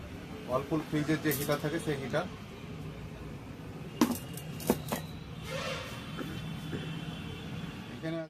ওয়ালপুল ফ্রিজের যে হিটার থাকে সেই হিটার। এখানে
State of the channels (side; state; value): both; identical; correlation 1.00